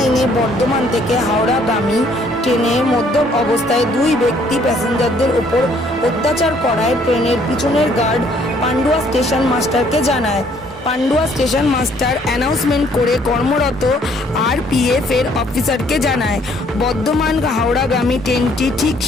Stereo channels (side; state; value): both; normal; correlation 0.63